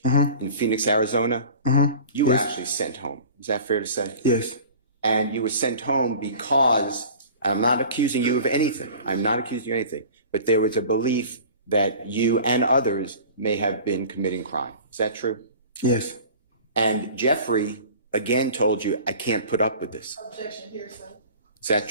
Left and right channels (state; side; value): inverted; both; correlation -0.41